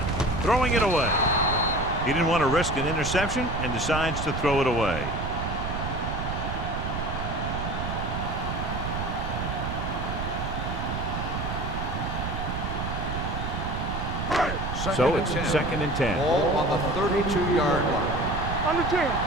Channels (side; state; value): right; noise; rumble, 4 dB below the sound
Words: Throwing it away. He didn't want to risk an interception and decides to throw it away. So it's 2nd and 10. Ball on the 32-yard line. Under 10.